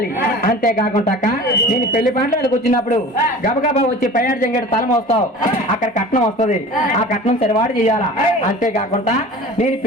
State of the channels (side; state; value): both; normal; correlation 0.39